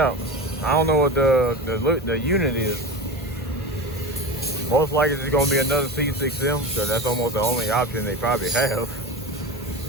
I don't know what the unit is. Most likely it's gonna be another C6M, so that's almost the only option they probably have.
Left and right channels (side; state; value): right; noise; hum, 18 dB below the sound